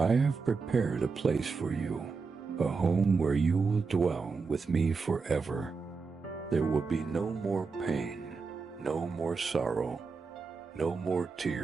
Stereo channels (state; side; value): quieter; left; 4.7 dB